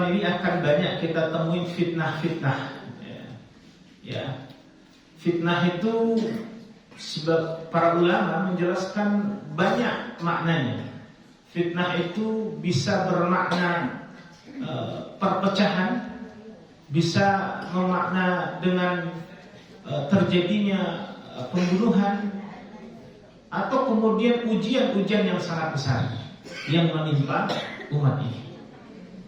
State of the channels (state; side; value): identical; both; correlation 1.00